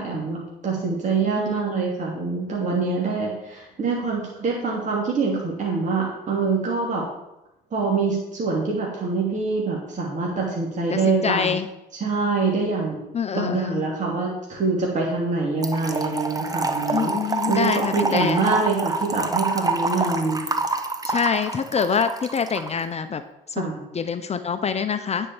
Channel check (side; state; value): both; normal; correlation 0.30